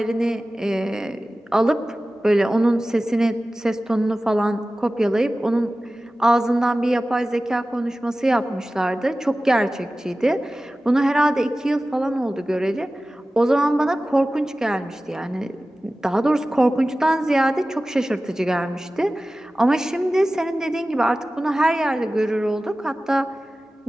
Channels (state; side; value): normal; both; correlation 0.96